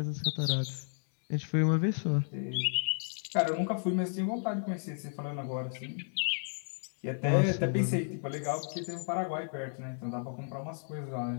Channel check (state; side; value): silent; right; digital silence